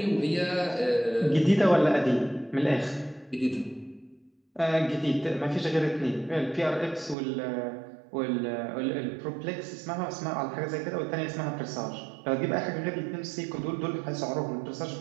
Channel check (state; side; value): drops out; left; at 7.2 s